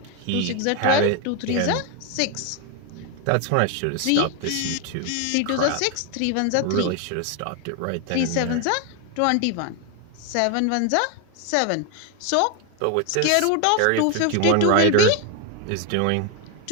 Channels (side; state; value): both; different; correlation 0.01